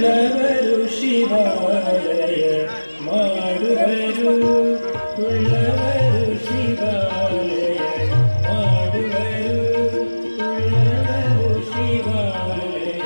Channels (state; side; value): inverted; both; correlation -1.00